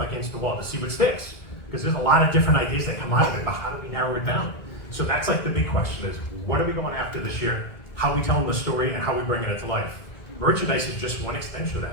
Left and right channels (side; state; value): right; late; 2.2 ms